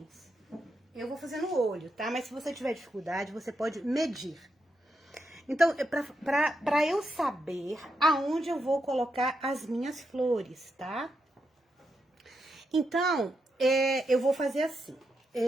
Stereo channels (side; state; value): both; normal; correlation 0.84